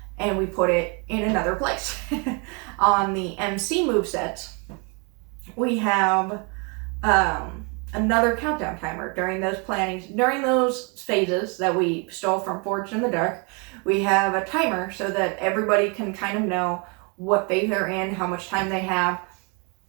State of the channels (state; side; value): quieter; left; 33.5 dB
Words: and we put it in another place. On the MC movesets, we have another countdown timer during those plannings, during those phases that we stole from Forged in the Dark. We have a timer so that everybody can kind of know what phase they're in, how much time they have.